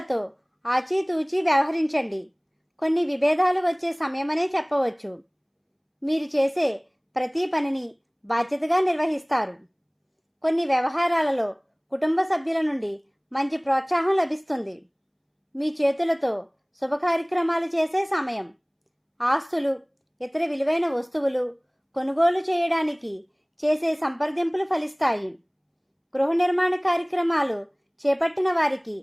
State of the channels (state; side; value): identical; both; correlation 1.00